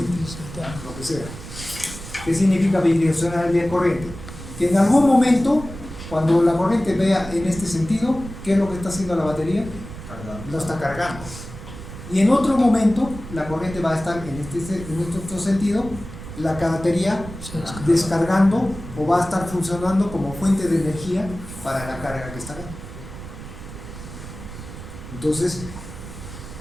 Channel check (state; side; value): noise; right; rumble, 12 dB below the sound